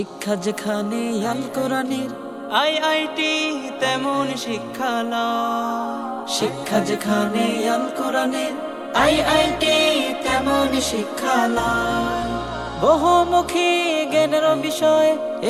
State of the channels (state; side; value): identical; both; correlation 1.00